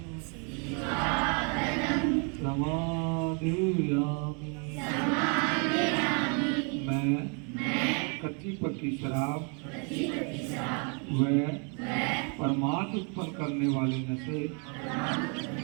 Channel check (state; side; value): quieter; left; 37.2 dB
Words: समादयामि। मैं कच्ची पक्की शराब व प्रमाद उत्पन्न करने वाले नशे